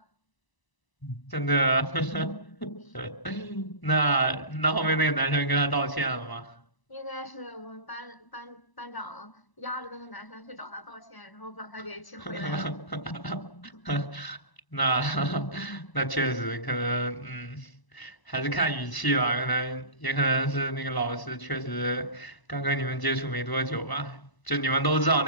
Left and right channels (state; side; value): late; right; 1.0 ms